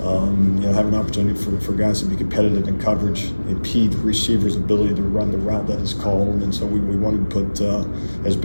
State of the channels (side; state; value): both; inverted; correlation -1.00